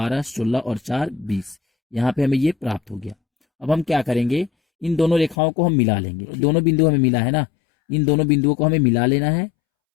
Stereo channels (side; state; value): right; drops out; at 5.4 s